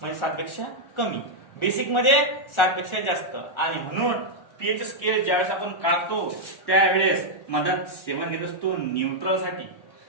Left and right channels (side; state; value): right; late; 1.4 ms